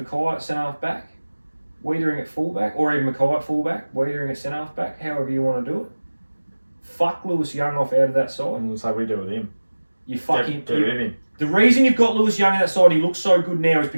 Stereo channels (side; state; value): both; inverted; correlation -1.00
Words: at centre half back. Wiedering at fullback, or even Mackay at fullback, Wiedering at centre half back, however you want to do it. Fuck Lewis Young off out of that side. And so we do with him. You fucking. Get rid of him. The reason you've got Lewis Young on that side, he looks so good now, is